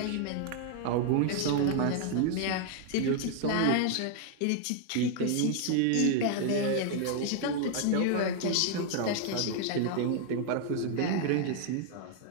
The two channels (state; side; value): different; both; correlation 0.00